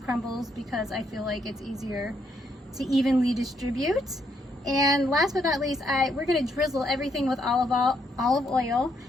because I feel like it's easier to evenly distribute. And last but not least, we're gonna drizzle everything with olive oil.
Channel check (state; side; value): normal; both; correlation 0.75